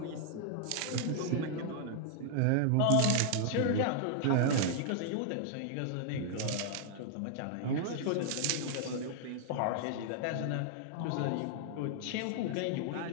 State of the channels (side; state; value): both; different; correlation -0.01